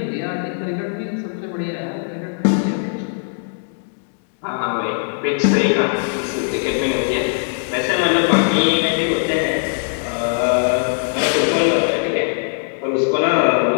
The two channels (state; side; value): silent; right; digital silence